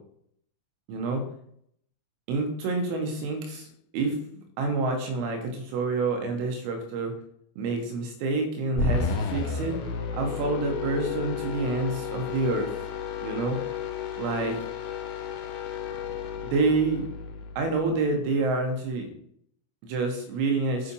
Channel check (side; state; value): left; late; 25 ms